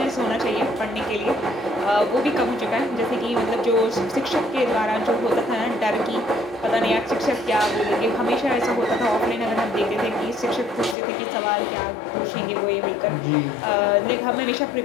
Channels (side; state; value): right; drops out; at 11.0 s